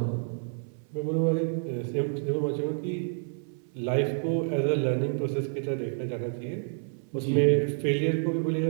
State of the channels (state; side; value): silent; left; 59 dB below the other